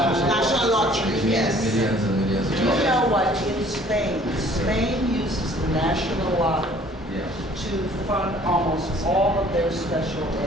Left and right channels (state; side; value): normal; both; correlation 0.55